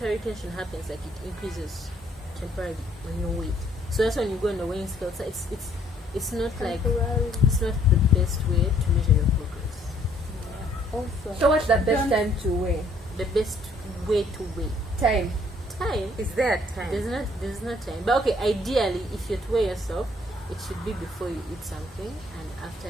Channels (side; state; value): both; normal; correlation 0.64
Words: retention happens, like it increases temporarily when you weight. So that's when you go on the weighing scale. So it's not like Temporarily. it's not the best way to measure your progress. Also. So what's the best Don't- time to weigh? The best way to weigh Time. time. Is there a time? There's not time. But okay, ideally, if you're to weigh yourself, it should be before you eat something and after